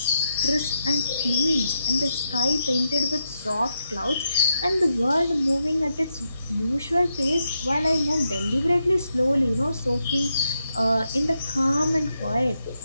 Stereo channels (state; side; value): inverted; both; correlation -0.84